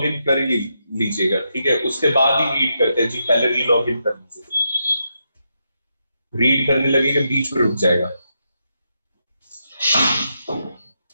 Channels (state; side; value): inverted; both; correlation -0.83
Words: इन कर लीजिएगा, ठीक है, उसके बाद ही रीड करते हैं जी। पहले री लॉग इन कर लीजिएगा, रीड करने लगेगा बीच में रुक जाएगा।